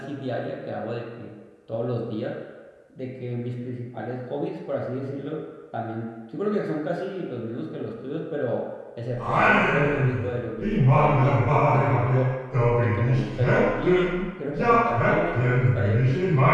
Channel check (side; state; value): both; identical; correlation 1.00